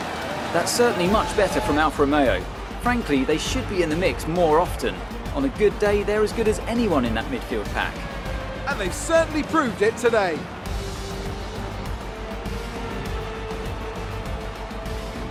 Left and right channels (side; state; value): both; identical; correlation 1.00